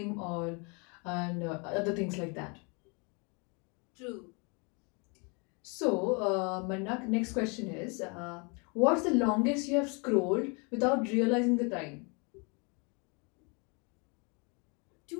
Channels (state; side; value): quieter; right; 32.6 dB